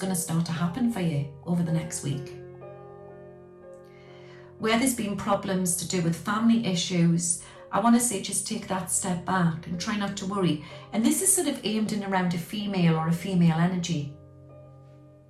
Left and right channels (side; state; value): both; identical; correlation 1.00